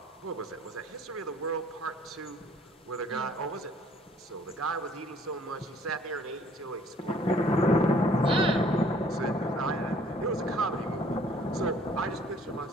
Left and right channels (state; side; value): normal; both; correlation 0.58